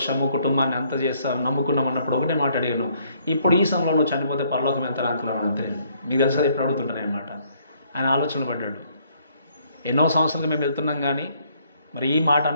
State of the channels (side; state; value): both; inverted; correlation -0.66